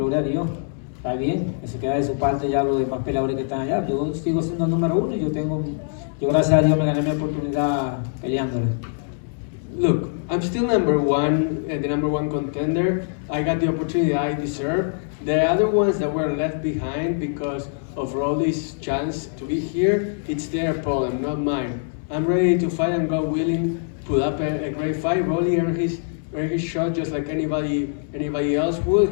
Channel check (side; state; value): right; silent; 63 dB below the other